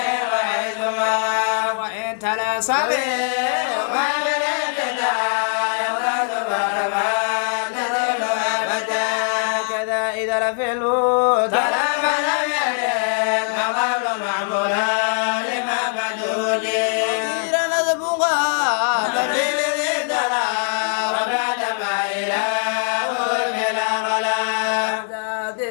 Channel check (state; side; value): silent; right; 65 dB below the other